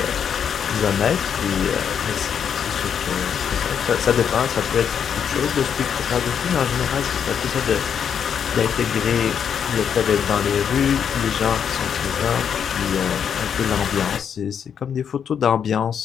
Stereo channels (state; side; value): quieter; right; 7.8 dB